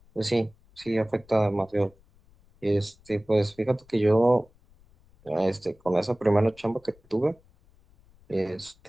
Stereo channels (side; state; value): left; noise; rumble, 29 dB below the sound